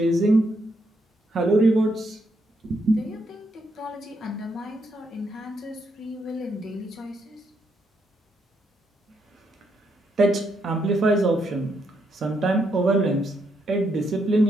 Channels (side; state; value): both; normal; correlation 0.78